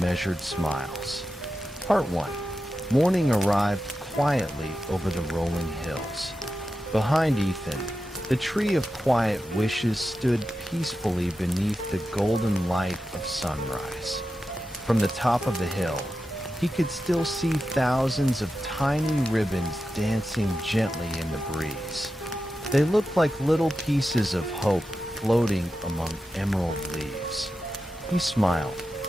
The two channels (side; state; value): both; normal; correlation 0.91